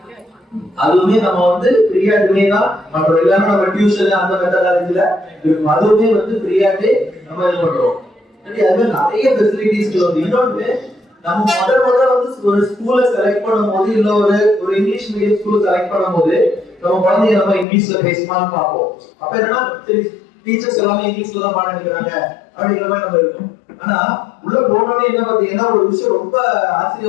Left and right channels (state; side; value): drops out; right; at 17.7 s